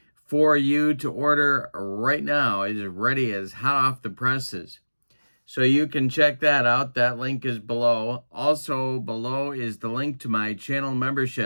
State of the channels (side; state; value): both; inverted; correlation -1.00